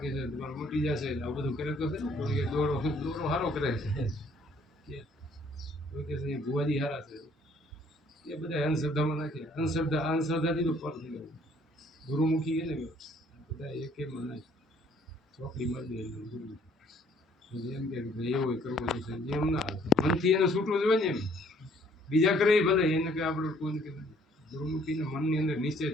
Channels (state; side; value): normal; both; correlation 0.62